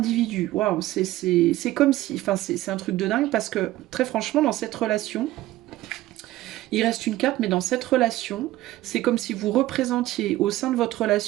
Waouh, c'est comme si, enfin, c'est un truc de dingue, parce que très franchement, dans cette relation, il reste une carte, mais dans cette relation, c'est comme si vous représentiez au sein de votre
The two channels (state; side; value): quieter; left; 16.2 dB